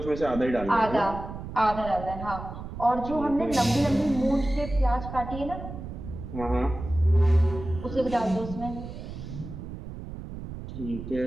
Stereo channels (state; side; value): noise; right; rumble, 10 dB below the sound